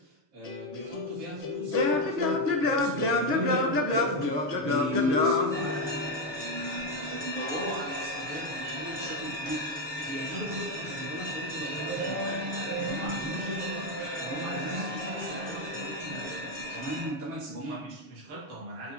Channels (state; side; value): late; left; 6.9 ms